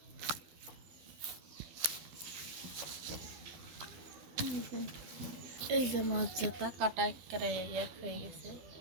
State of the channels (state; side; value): late; left; 12 ms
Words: যে এই যে মাছ যাতা কাটা একেবারে এক হয়ে গেছে।